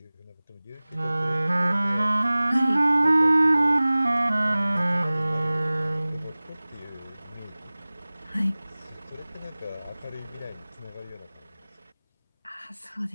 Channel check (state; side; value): inverted; both; correlation -0.99